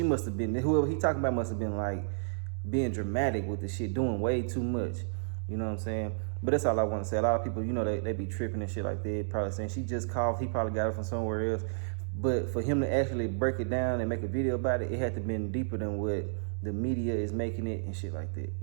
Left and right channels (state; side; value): silent; left; 57 dB below the other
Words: must have been, whoever he talking about must have been like being dramatic with the shit, doing way too much, you know what I'm saying. But that's all I want to say. A lot of people, they be tripping and shit like that, probably saying she just coughed, he probably got it from somewhere else. But for him to actually break it down and make a video about it, it had to have been deeper than what the media is making it and shit like that,